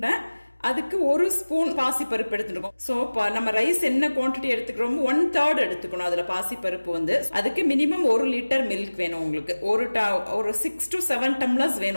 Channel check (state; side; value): inverted; both; correlation -1.00